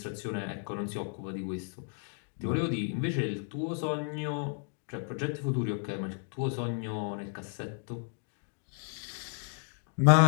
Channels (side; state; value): right; silent; 56 dB below the other